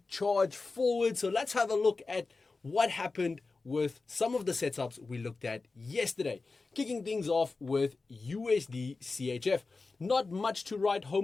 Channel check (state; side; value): quieter; right; 3.9 dB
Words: charge forward. So let's have a look at what happened with some of the setups we looked at yesterday. Kicking things off with USD CHF. Not much to write